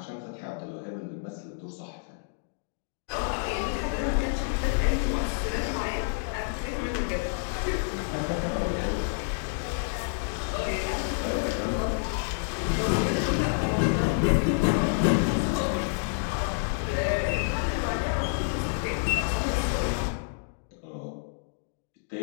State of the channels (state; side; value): silent; right; digital silence